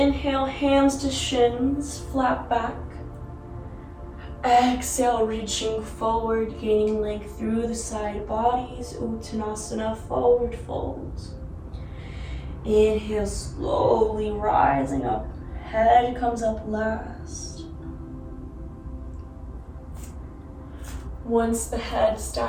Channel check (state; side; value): identical; both; correlation 1.00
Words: hands to shins, flat back. Exhale, reaching forward, gaining length through the side bodies, Uttanasana, forward fold. Inhale, slowly rising up, head comes up last. Once the head